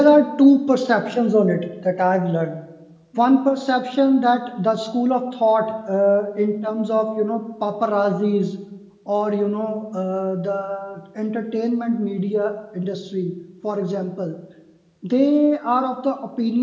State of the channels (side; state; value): both; identical; correlation 1.00